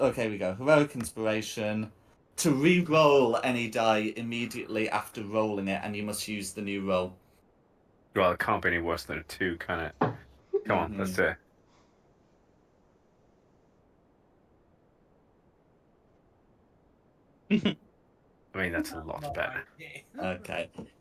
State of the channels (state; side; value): identical; both; correlation 1.00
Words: We go heroic inspiration to re-roll any die immediately after rolling it, and you must use the new roll. Well, it can't be any worse than a 2, can it? Come on, let's do it. I mean, that's a lot better. Okay.